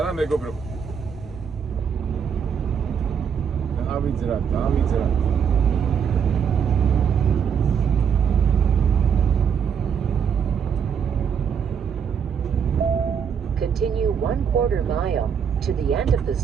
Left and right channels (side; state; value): left; quieter; 7.2 dB